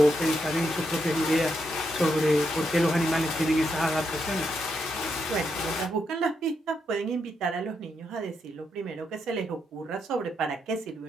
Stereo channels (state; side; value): normal; both; correlation 0.81